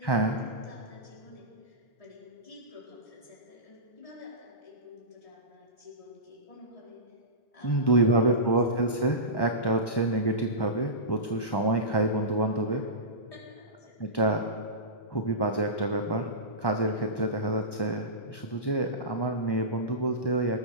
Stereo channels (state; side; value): late; right; 1.1 ms